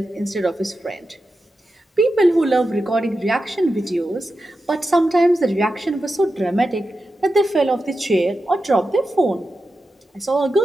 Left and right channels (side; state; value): both; normal; correlation 0.90